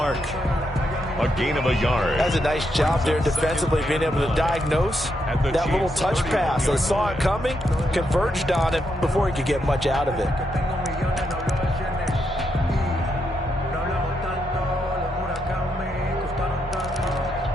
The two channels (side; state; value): both; normal; correlation 0.81